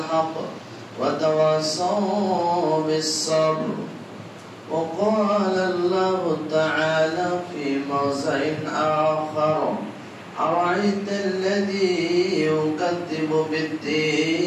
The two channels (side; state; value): both; identical; correlation 1.00